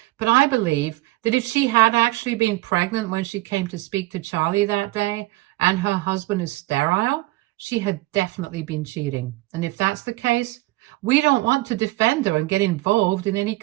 But I believe that if she had actually been pregnant when she came to speak to Charlie that day, and her husband is sterile, she had definitely been cheating. And if that's the case, we don't want to defend her and get involved in any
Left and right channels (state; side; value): quieter; left; 19.6 dB